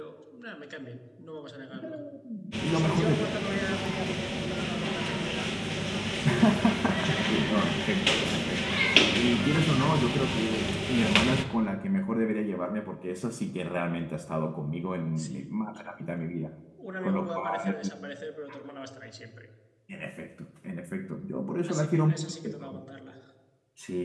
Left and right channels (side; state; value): both; identical; correlation 1.00